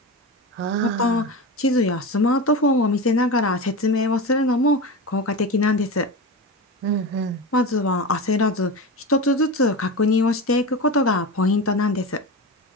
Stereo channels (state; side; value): normal; both; correlation 0.24